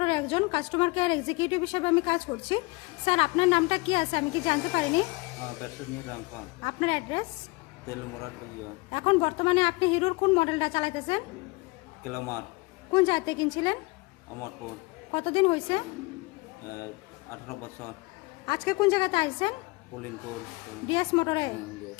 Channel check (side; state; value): right; quieter; 25.3 dB